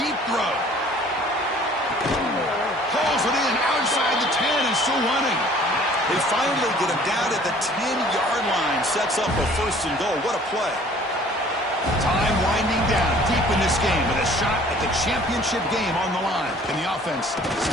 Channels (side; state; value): both; normal; correlation 0.53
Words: throw. Pulls it in outside the 10 and still running. They finally get him down at the 10-yard line. Sets up a 1st and goal. What a play. Time winding down deep in this game with a shot at the championship game on the line. Can the offense